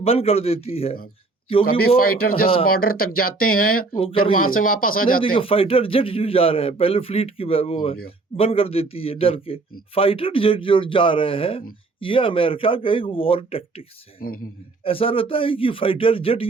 بند کر دیتی ہے, کبھی فائٹر جس بارڈر تک جاتے ہیں پھر وہاں سے واپس آ جاتے ہیں. فائٹر جیٹ جو جا رہے ہیں پہلے فلیٹ کی وہ بند کر دیتی ہے ڈر کے. فائٹر جیٹ جو جا رہے ہیں یہ امریکہ کا ایک وار ٹیکٹکس ہے. ایسا رہتا ہے کہ فائٹر جیٹ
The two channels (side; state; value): left; quieter; 3.6 dB